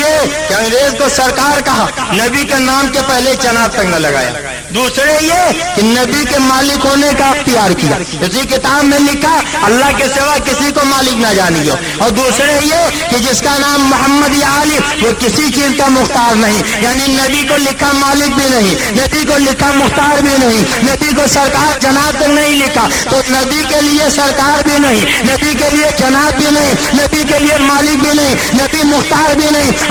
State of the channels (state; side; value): identical; both; correlation 1.00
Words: کہ انگریز کو سرکار کہا, نبی کے نام کے پہلے چناب تک نہ لگایا. دوسرے یہ کہ نبی کے مالک ہونے کا اختیار کیا, اسی کتاب میں لکھا اللہ کے سوا کسی کو مالک نہ جانیو. اور دوسرے یہ کہ جس کا نام محمد یا علی وہ کسی چیز کا مختار نہیں, یعنی نبی کو لکھا مالک بھی نہیں, نبی کو لکھا مختار بھی نہیں, نبی کو سرکار جناب تک نہیں لکھا, تو نبی کے لیے سرکار بھی نہیں, نبی کے لیے جناب بھی نہیں, نبی کے لیے مالک بھی نہیں, نبی مختار بھی نہیں.